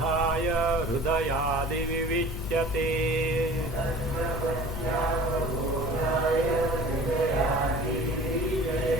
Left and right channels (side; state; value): both; normal; correlation 0.43